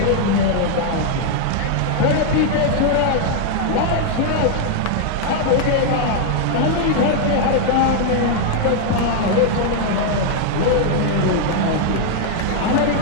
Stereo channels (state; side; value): different; both; correlation 0.00